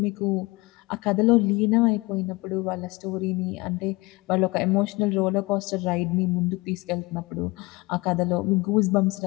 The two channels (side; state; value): right; quieter; 23.5 dB